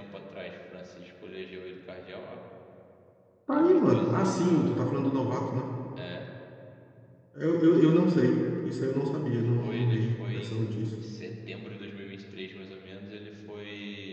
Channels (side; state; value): both; identical; correlation 1.00